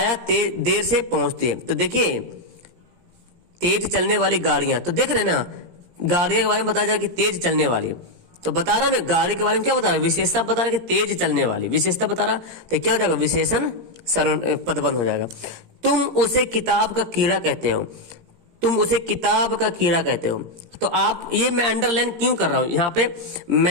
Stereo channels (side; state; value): left; late; 17 ms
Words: देर से पहुंचती है। तो देखिए तेज चलने वाली गाड़ियां, तो देख रहे ना, गाड़ियों के बारे में बताया जाए कि तेज चलने वाली, तो बता रहा ना गाड़ी के बारे में क्या बता रहा है? विशेषता बता रहा है कि तेज चलने वाली, विशेषता बता रहा, तो क्या हो जाएगा? विशेषण पदबंध हो जाएगा। तुम उसे किताब का कीड़ा कहते हो, तुम उसे किताब का कीड़ा कहते हो। तो आप, ये मैं अंडरलाइन क्यों कर रहा हूं यहाँ पे?